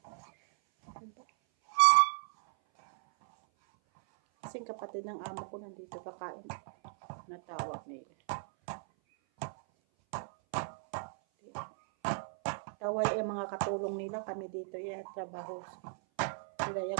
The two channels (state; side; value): silent; left; 54 dB below the other